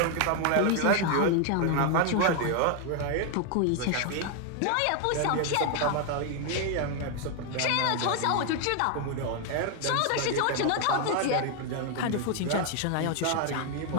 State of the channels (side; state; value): both; different; correlation 0.01